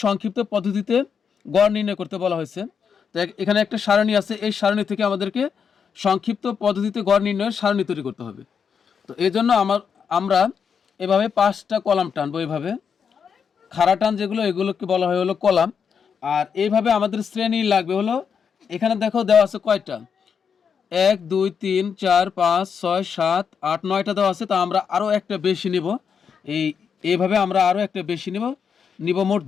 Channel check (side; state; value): right; quieter; 6.7 dB